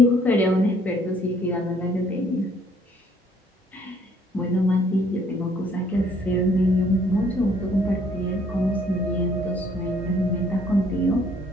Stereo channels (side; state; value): both; normal; correlation 0.62